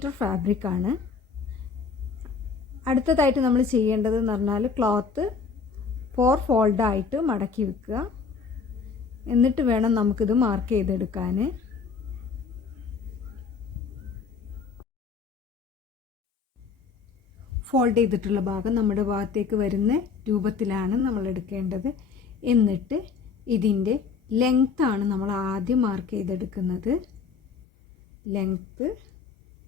ഫാബ്രിക്കാണ്. അടുത്തതായിട്ട് നമ്മൾ ചെയ്യേണ്ടത് എന്ന് പറഞ്ഞാൽ ക്ലോത്ത് 4 ഫോൾഡായിട്ട് മടക്കി വെക്കുക. എന്നിട്ട് വേണം നമുക്കിത് മാർക്ക് ചെയ്തെടുക്കാൻ. ഫോൾഡ് ചെയ്തിട്ടുള്ള ഭാഗം നമ്മുടെ ഭാഗത്തേക്ക് വരുന്ന രൂപത്തിലാണ് നമ്മൾ എടുക്കേണ്ടത്. എന്നിട്ട് ഇതിൻ്റെ ലെങ്ത്താണ് നമ്മൾ ആദ്യം മാർക്ക് ചെയ്തെടുക്കുന്നത്. ലെങ്ത്ത്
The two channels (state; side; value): quieter; right; 5.5 dB